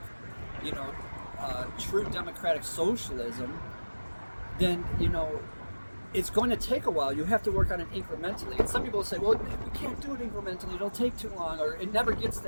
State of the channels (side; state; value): both; inverted; correlation -1.00